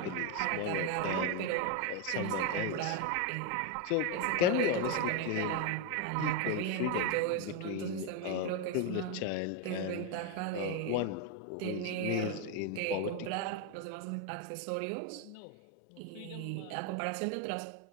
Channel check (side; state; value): both; different; correlation 0.02